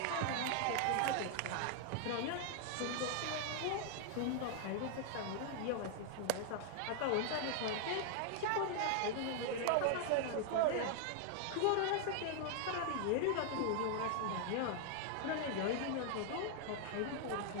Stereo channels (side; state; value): both; different; correlation 0.00